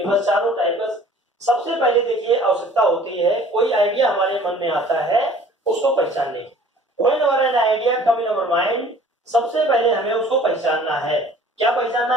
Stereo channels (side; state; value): both; normal; correlation 0.51